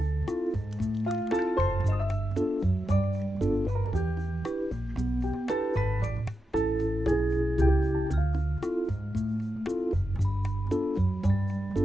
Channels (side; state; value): both; normal; correlation 0.89